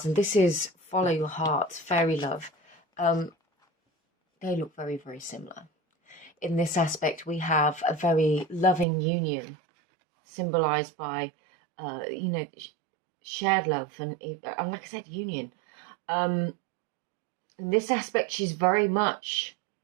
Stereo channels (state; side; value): drops out; left; at 8.8 s